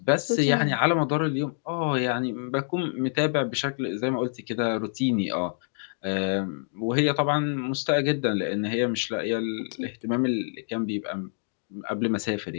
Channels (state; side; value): silent; right; digital silence